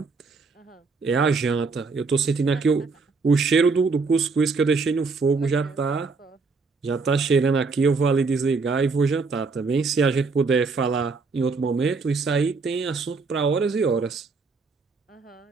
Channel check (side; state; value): left; quieter; 4.4 dB